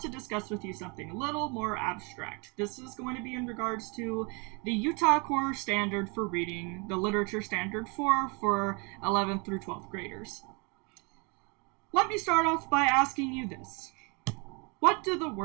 to discuss with you something a little more abstract. This is going to be in regards to the Utah Core Standard for Reading, the Literature Standard 4 for 11th through 12th graders. Let me start off by asking you this. What do the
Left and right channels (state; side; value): quieter; left; 31.5 dB